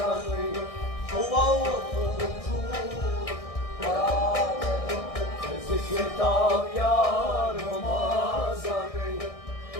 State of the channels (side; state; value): right; late; 1.6 ms